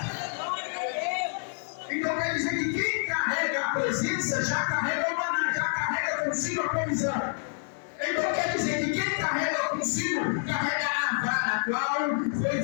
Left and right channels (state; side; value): silent; right; 59 dB below the other